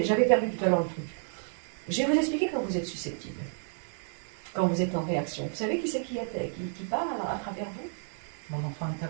j'avais perdu tout à l'heure le truc. Je vais vous expliquer quand vous êtes susceptible, quand vous êtes en réaction. Vous savez qui c'est qui parle à travers vous? Mon enfant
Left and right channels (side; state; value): left; silent; 57 dB below the other